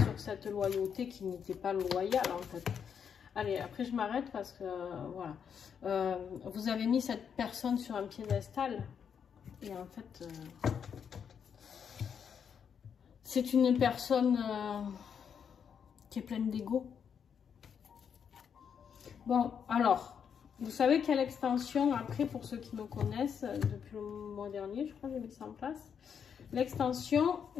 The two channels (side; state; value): right; quieter; 7.4 dB